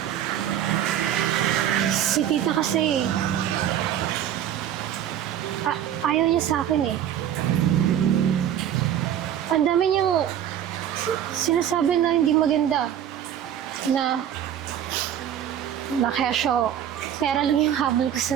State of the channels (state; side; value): quieter; left; 10.3 dB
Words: Si tita kasi, ayaw niya sa akin eh. Ang dami niyang sinasabi na hindi maganda. Na kesyo, pera lang yung habol ko